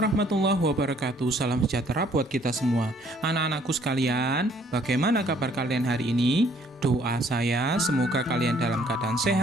wabarakatuh. Salam sejahtera buat kita semua. Anak-anakku sekalian, bagaimana kabar kalian hari ini? Doa saya semoga kalian dalam keadaan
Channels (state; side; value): normal; both; correlation 0.62